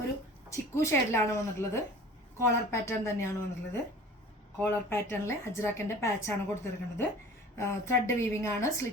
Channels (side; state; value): both; normal; correlation 0.43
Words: ഒരു ചിക്കു ഷെയ്ഡിലാണ് വന്നിട്ടുള്ളത്. കോളർ പാറ്റേൺ തന്നെയാണ് വന്നിട്ടുള്ളത്. കോളർ പാറ്റേണിൽ അജ്രാക്കിന്റെ പാച്ചാണ് കൊടുത്തിരിക്കുന്നത്. ത്രെഡ് വീവിംഗ് ആണ്.